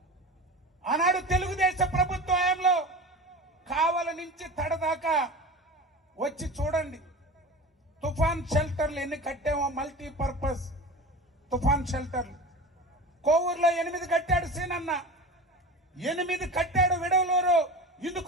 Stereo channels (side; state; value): both; normal; correlation 0.32